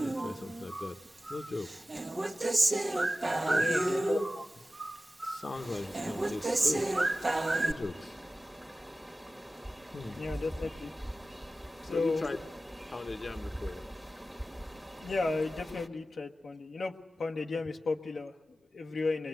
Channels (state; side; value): normal; both; correlation 0.95